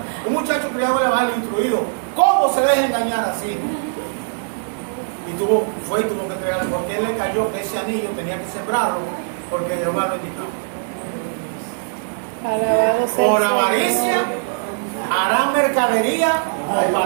un muchacho criado en el evangelio, instruido, ¿cómo se deja engañar así? Y tuvo que entregarle, porque él le cayó que ese anillo tenía que sembrarlo, porque Jehová lo indicaba. Por avaricia harán mercadería o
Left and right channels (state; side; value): silent; left; digital silence